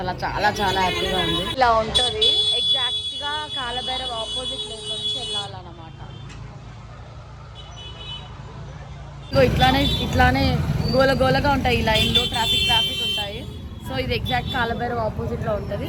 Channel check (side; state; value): both; identical; correlation 1.00